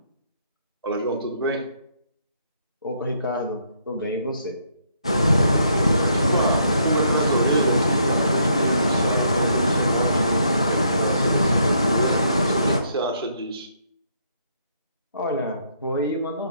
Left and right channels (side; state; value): both; inverted; correlation -0.72